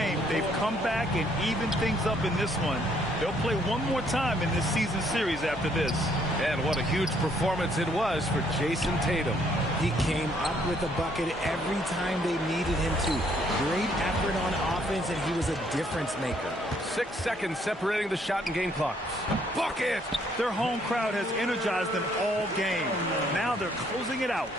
they've come back and evened things up in this one. They'll play one more time in this season series after this. And what a huge performance it was for Jason Tatum. He came up with a bucket every time they needed him to. Great effort on offense, and he was a difference maker. 6 seconds separating the shot and game clocks. Bucket! Their home crowd has energized them all game. Now they're closing it out.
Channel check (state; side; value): normal; both; correlation 0.67